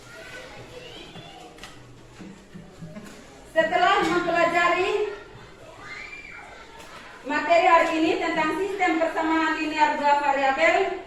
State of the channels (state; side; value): identical; both; correlation 1.00